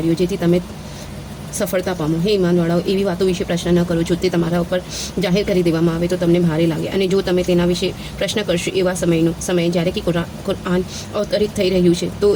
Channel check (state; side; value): identical; both; correlation 1.00